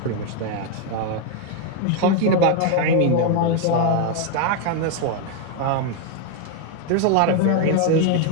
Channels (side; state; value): both; different; correlation 0.01